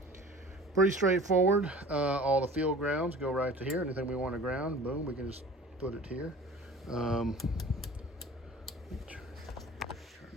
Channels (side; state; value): both; normal; correlation 0.42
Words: Pretty straightforward. All the field grounds go right to here. Anything we want to ground, boom, we can just put it here. Turn